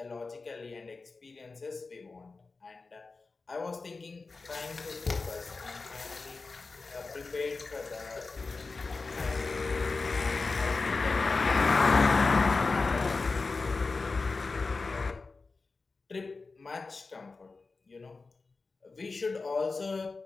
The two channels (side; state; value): right; quieter; 4.0 dB